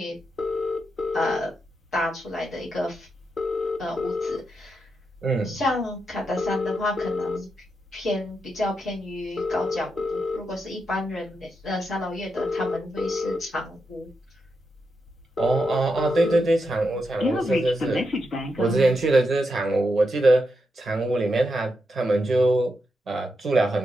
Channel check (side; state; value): both; normal; correlation 0.85